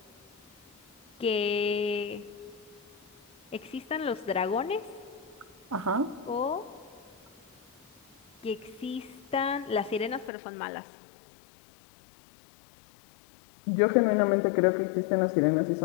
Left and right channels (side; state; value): right; drops out; at 10.3 s